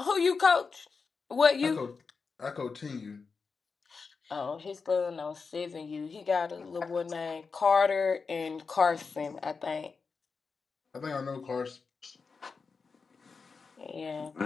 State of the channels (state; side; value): quieter; right; 4.9 dB